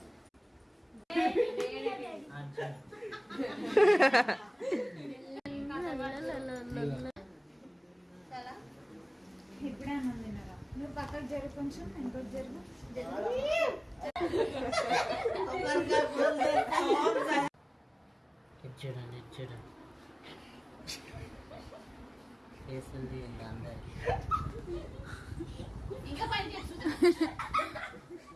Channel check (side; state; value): both; identical; correlation 1.00